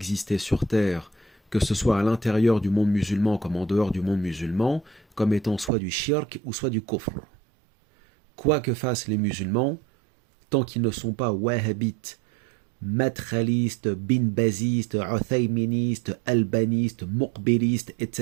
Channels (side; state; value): left; drops out; at 5.7 s